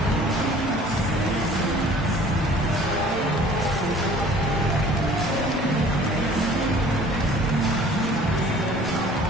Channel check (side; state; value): both; normal; correlation 0.51